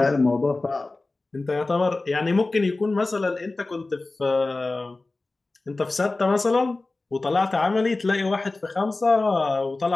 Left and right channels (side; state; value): right; quieter; 3.2 dB